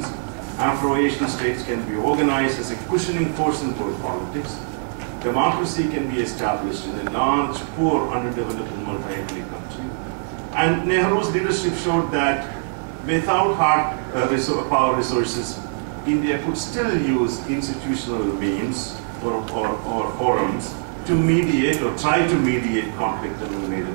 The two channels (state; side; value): silent; left; digital silence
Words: Afro-Asian states can be organized as a cushioning force in world politics. Democracy can be established in a large, poor, underdeveloped, multi-ethnic country. And Nehru's leadership showed that without hard power resources, India could still use institutional means or forums to mediate or try to mediate conflict among major